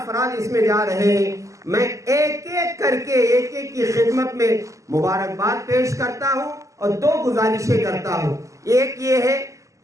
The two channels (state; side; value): late; left; 0.16 ms